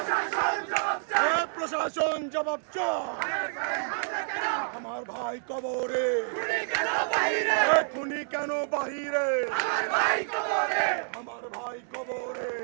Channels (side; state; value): left; silent; digital silence